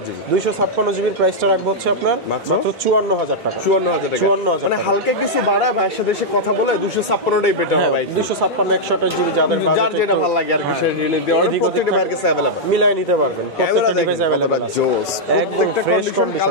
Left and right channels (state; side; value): normal; both; correlation -0.05